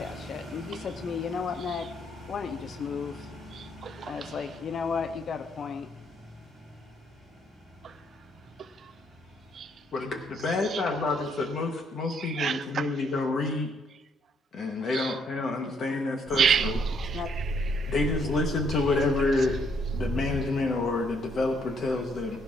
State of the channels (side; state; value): both; normal; correlation 0.69